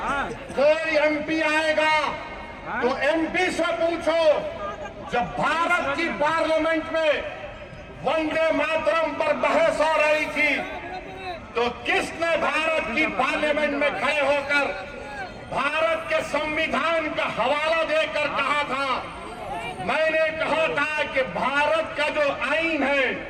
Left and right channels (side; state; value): both; identical; correlation 1.00